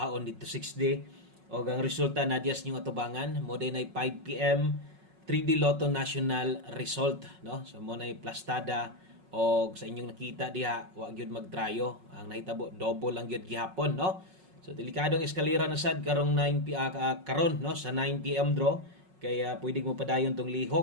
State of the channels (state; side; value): late; left; 5.4 ms